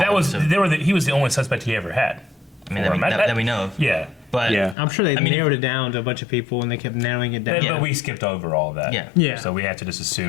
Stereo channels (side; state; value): right; drops out; at 4.8 s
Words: following, was so, he was the only suspect he ever had. I mean, that we know of. Yeah. But I'm sure they I mean, narrowed it down to a bunch of people and they kept narrowing it down. But we skipped over all of that. Yeah. Yeah. So we have to just